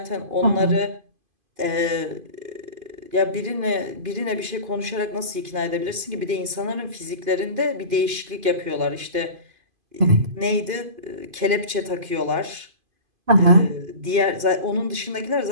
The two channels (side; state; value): left; late; 2.5 ms